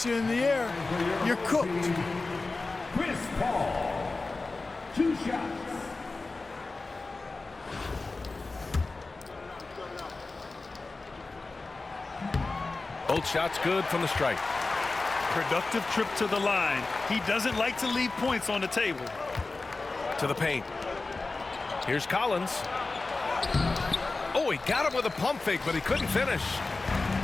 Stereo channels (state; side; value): quieter; right; 3.5 dB